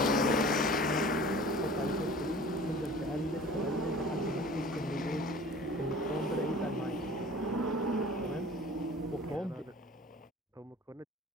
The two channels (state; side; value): normal; both; correlation 0.44